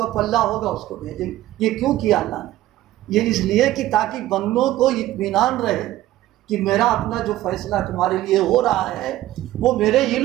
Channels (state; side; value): quieter; left; 14.9 dB